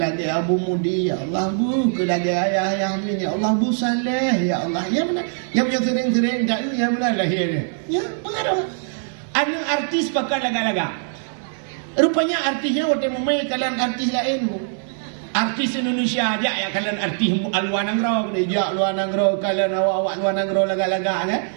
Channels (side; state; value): left; silent; digital silence